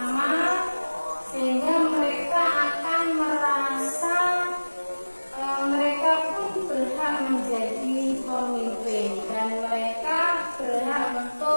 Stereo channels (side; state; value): both; inverted; correlation -1.00